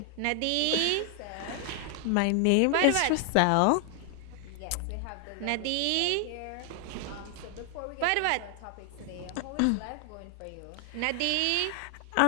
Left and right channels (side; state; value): both; different; correlation 0.00